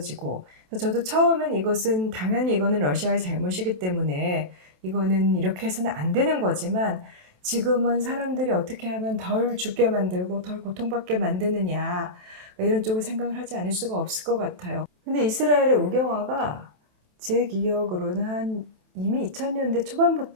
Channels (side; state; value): left; late; 27 ms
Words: 그래서 저도 처음엔 이것은 당연히 이거는 러시아의 잘못이기 때문에 이거는 이렇게 해서는 안 되는 거지만, 지금은 사람들이 어떻게 하면 덜 죽게 만들고 덜 고통받게 만드느냐 이런 쪽을 생각을 하지 않을 수가 없을 것 같아요. 근데 이스라엘의 우경화가 제 기억으로는 한 이미 2000년대